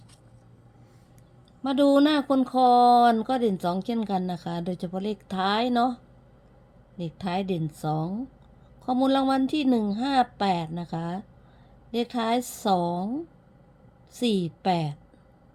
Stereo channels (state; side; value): identical; both; correlation 1.00